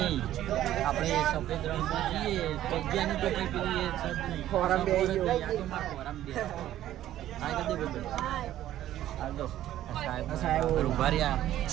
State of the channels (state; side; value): quieter; left; 12.9 dB